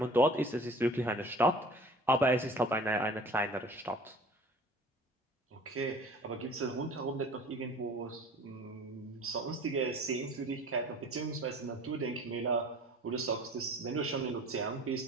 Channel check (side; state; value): both; normal; correlation 0.45